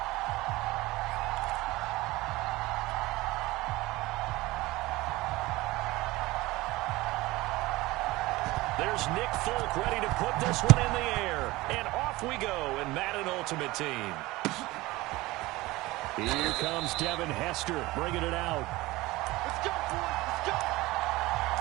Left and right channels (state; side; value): quieter; left; 19.9 dB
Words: There's Nick Folk ready to put this one in the air. And off we go in Madden Ultimate Team. Here comes Devin Hester bringing it out. Let's go, boys. Let's go.